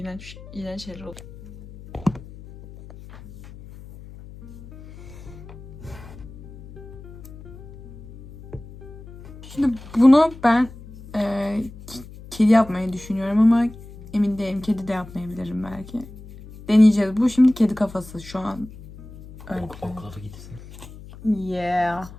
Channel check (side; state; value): left; noise; hum, 17 dB below the sound